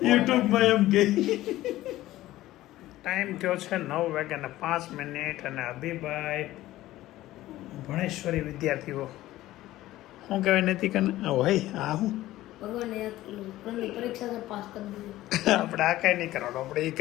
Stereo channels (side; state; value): right; quieter; 15.7 dB